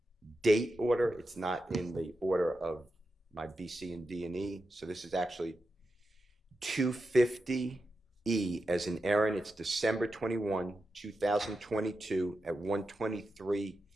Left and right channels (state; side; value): normal; both; correlation 0.89